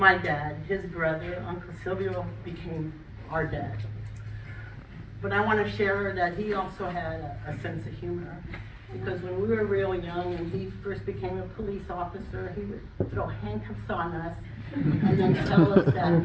dad, his brother, Uncle Silvio, became our dad. But I want to share that he also had a sense of humor, because when we were real young and he first became a police officer, he would throw handcuffs on us and then tell us that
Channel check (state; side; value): identical; both; correlation 1.00